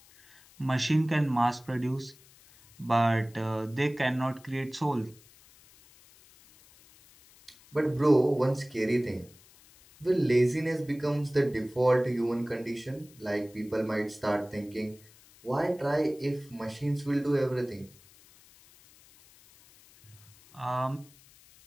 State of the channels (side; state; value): left; noise; hiss, 26 dB below the sound